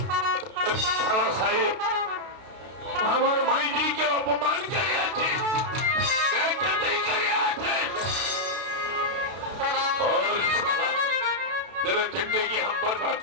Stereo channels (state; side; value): late; left; 32 ms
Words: শালা সাহেব, আমার মাইনিকে অপমান করিয়াছে, বেইজ্জতি করিয়াছে। और साला, तेरे जिंदगी हम बर्बाद